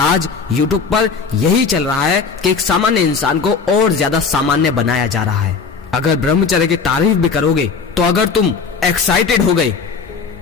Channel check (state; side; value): quieter; right; 5.2 dB